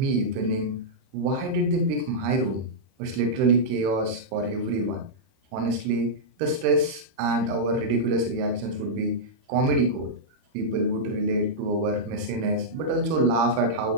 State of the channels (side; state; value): left; late; 31 ms